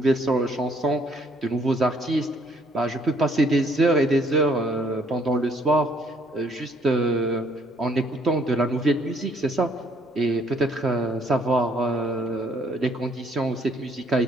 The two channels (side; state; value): both; normal; correlation 0.65